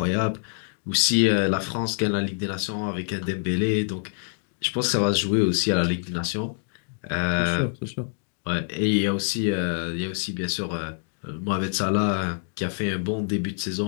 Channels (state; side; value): silent; right; digital silence